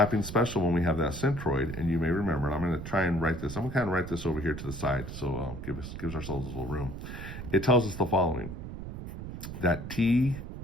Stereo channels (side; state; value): right; noise; rumble, 9 dB below the sound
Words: special when we have that centroid, and you may remember, and I'm going to try and write this. I'm going to kind of write this over here to the side, so gives ourselves a little room. It tells us the following, that TG,